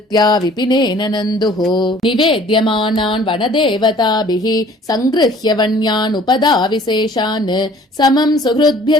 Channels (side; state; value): both; normal; correlation 0.53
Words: विपिनेन नन्दुः निवेद्यमानान् वनदेवताभिः सङ्गृह्य वन्यान् उपदाविशेषान् समम् सुहृद्भ्य